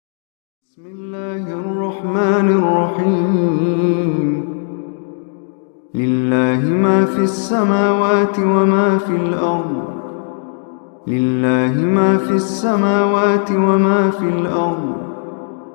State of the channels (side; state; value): right; silent; digital silence